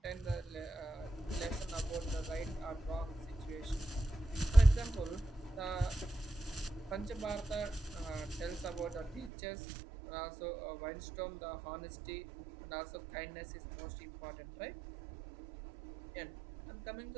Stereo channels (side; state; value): left; drops out; at 9.3 s